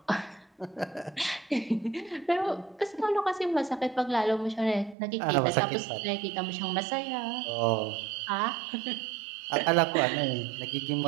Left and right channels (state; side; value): drops out; left; at 5.0 s